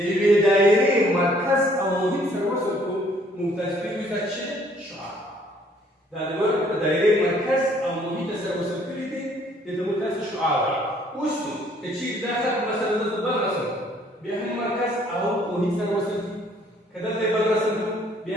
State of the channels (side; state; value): both; normal; correlation 0.61